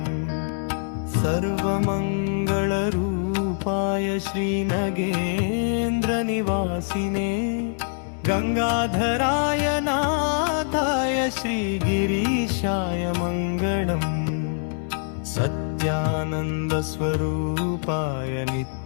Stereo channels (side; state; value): right; silent; digital silence